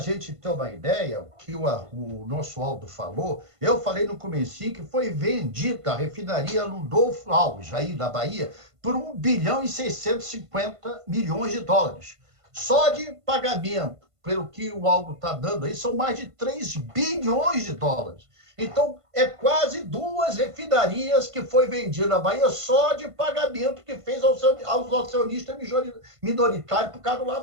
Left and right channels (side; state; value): left; late; 1.5 ms